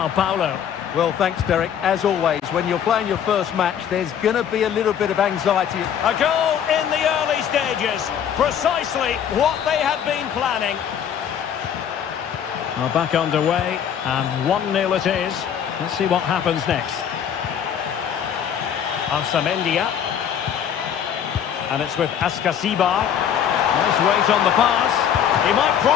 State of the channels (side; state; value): right; quieter; 8.9 dB